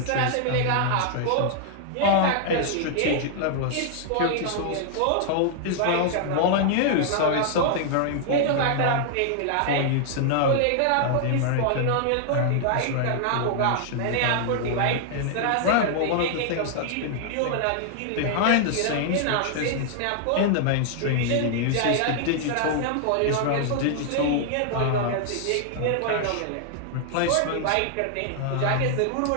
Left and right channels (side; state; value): both; different; correlation 0.00